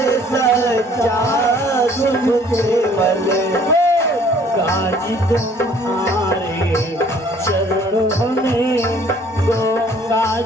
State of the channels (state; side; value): normal; both; correlation 0.57